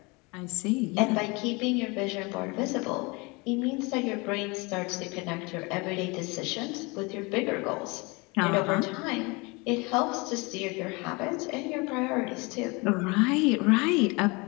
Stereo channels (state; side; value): quieter; right; 26.9 dB